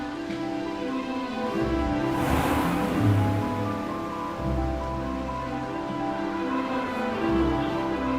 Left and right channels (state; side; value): identical; both; correlation 1.00